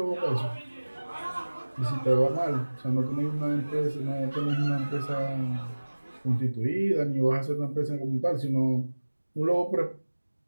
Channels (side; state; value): both; inverted; correlation -1.00